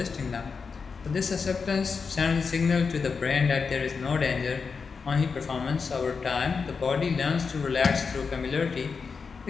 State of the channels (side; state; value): right; quieter; 5.3 dB